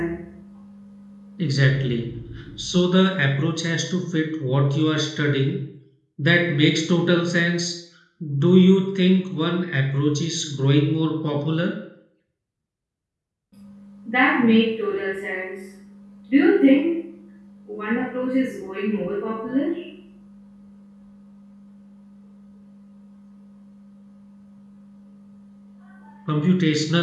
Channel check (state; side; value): identical; both; correlation 1.00